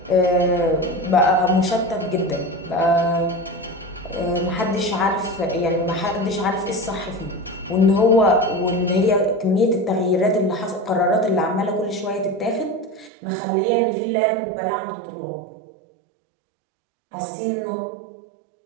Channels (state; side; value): drops out; left; at 13.1 s